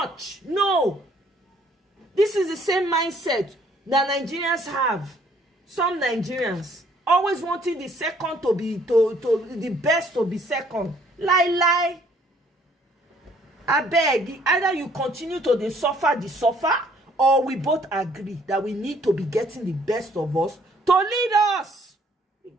No. This is the same mindset that Nigerians have. Some Nigerians always wanting the second to be the best to be second. Lie. I beg, either you continue to suffer, or we both agree that we need to be getting the best of us to lead us,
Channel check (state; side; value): normal; both; correlation 0.62